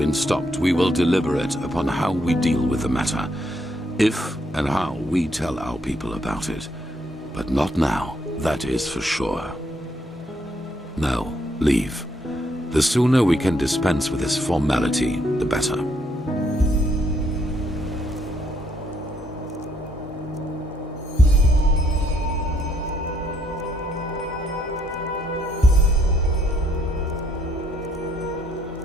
stopped, we will deliberate upon how we deal with the matter, if and how we tell our people about it. But not now, that is for sure. Now, leave. The sooner we can dispense with this formality, the better.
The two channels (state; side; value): normal; both; correlation 0.71